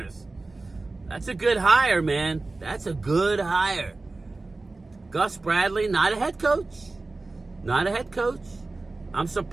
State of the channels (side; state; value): left; quieter; 3.4 dB